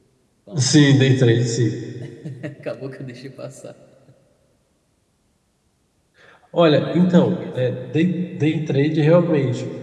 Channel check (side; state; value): both; identical; correlation 1.00